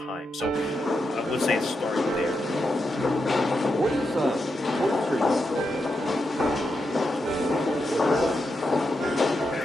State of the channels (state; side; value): normal; both; correlation 0.85